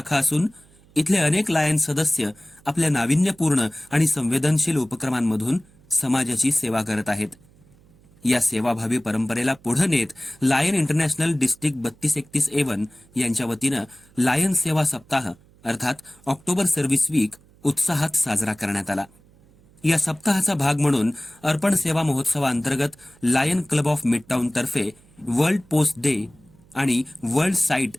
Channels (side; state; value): right; noise; hum, 28 dB below the sound